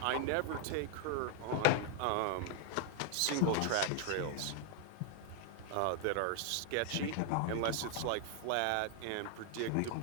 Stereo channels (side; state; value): both; different; correlation 0.00